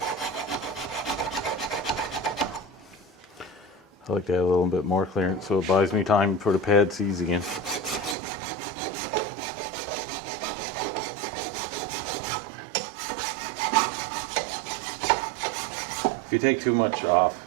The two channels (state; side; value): drops out; left; at 8.2 s